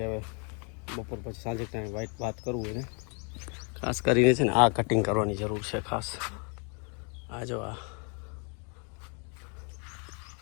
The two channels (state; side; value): quieter; right; 37.9 dB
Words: હવે બપોર પછી સાંજે ટાઈમ વાત કરવું એને. ખાસ કરીને છે ને આ કટિંગ કરવાની જરૂર છે ખાસ. આ જો આ.